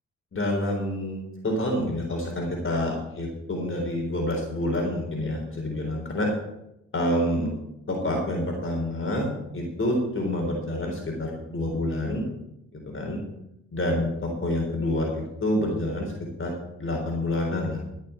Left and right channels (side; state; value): both; normal; correlation 0.41